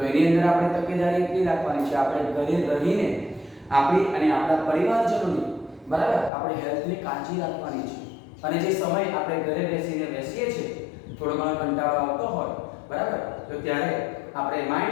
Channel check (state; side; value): drops out; right; at 6.3 s